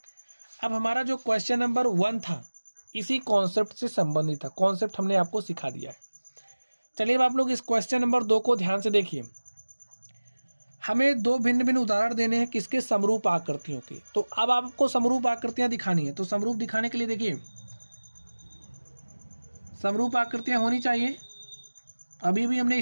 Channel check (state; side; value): inverted; both; correlation -1.00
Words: अब हमारा जो क्वेश्चन नंबर 1 था इसी कॉन्सेप्ट से संबंधित था, कॉन्सेप्ट हमने आपको सिखा दिया है। चलिए अब आप लोग इस क्वेश्चन नंबर 2 को ध्यान से देखिए। हमें दो भिन्न भिन्न उदाहरण देने हैं किसके? समरूप आकृतियों के। तो अब आपको समरूप आकृतियां दिखानी है, तो समरूप दिखाने के लिए देखिए, समरूप आकृतियां होनी चाहिए। अभी भी हमने